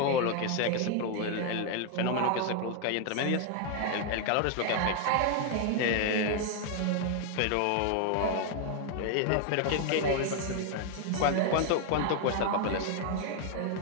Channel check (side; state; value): both; different; correlation 0.00